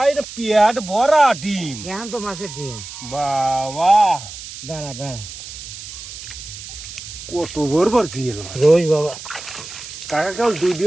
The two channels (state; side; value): noise; right; hiss, 12 dB below the sound